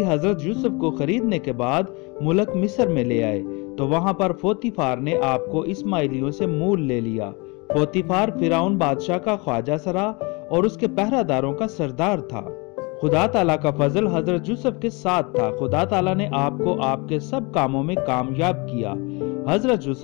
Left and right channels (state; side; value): quieter; right; 28.2 dB